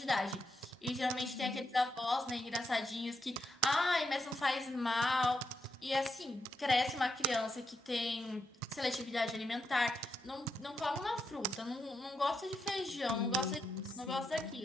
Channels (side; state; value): both; normal; correlation 0.82